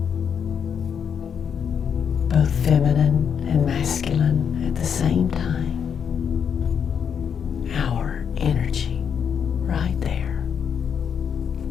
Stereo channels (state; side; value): quieter; right; 7.4 dB